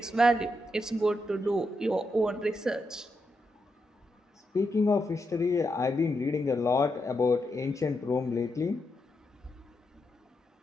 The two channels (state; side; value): normal; both; correlation 0.84